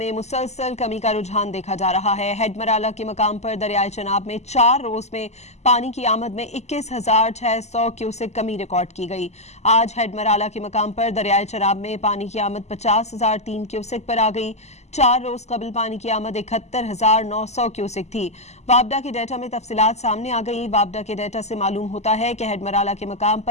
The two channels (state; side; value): late; right; 0.33 ms